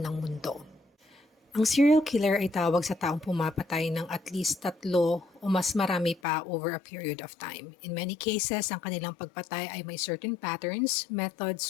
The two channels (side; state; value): right; drops out; at 6.2 s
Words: mundo. Ang serial killer ay tawag sa taong pumapatay ng at least 3 o mas marami pa over a period of time. In many cases, ang kanilang pagpatay ay may certain patterns, methods,